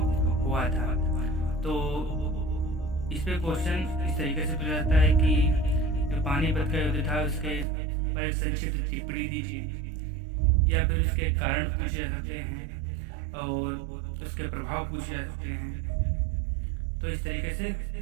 हुआ था। तो इस पे क्वेश्चन इस तरीके से पूछा जाता है कि जो पानीपत का युद्ध था उसके पर एक संक्षिप्त टिप्पणी दीजिए, या फिर उसके कारण पूछे जा सकते हैं और उसके प्रभाव पूछे जा सकते हैं। तो इस तरीके से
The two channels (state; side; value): drops out; left; at 7.7 s